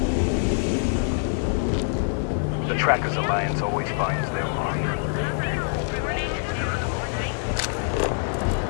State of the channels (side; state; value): right; silent; 62 dB below the other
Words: Trackers Alliance always finds their mark.